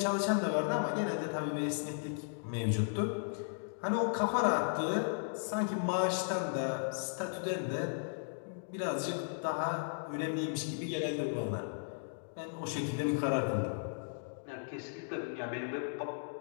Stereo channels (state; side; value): silent; right; digital silence